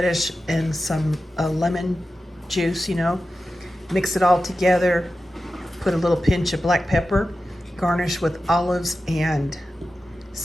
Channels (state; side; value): normal; both; correlation 0.93